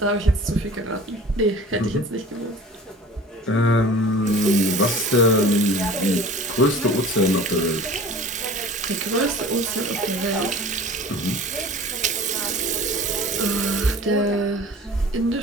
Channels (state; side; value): normal; both; correlation 0.42